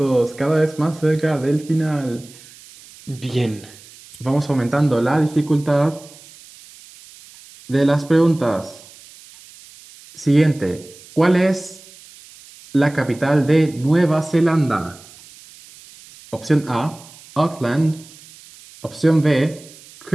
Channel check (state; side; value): noise; right; hiss, 22 dB below the sound